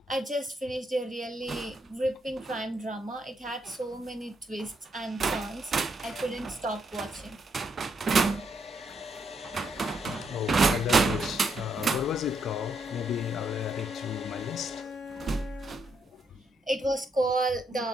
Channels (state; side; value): normal; both; correlation 0.77